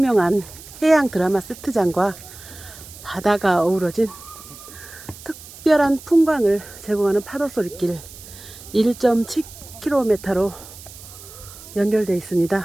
해양 드라마 세트장과 바다가 어우러진 특별한 풍광을 제공하는 파도 소리길 1.7km로 연결되어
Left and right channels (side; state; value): right; noise; hiss, 17 dB below the sound